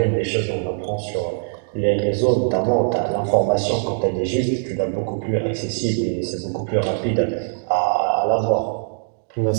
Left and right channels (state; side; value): silent; left; 65 dB below the other